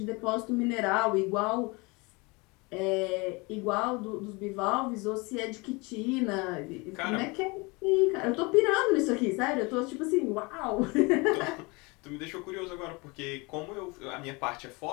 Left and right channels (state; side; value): quieter; right; 26.8 dB